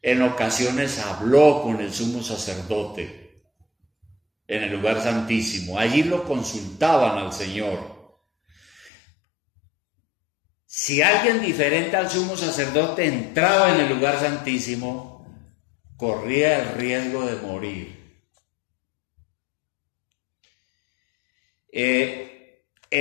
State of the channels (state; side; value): drops out; right; at 8.9 s